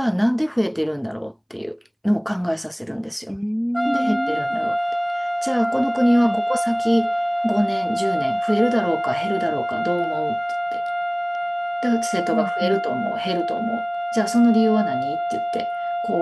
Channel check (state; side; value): identical; both; correlation 1.00